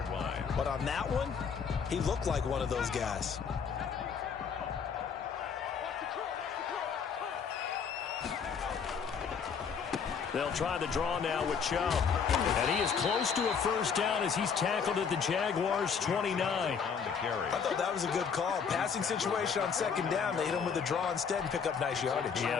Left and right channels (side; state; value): right; quieter; 6.4 dB